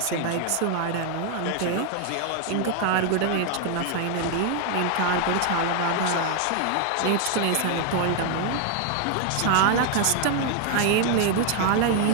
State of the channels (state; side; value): different; both; correlation 0.01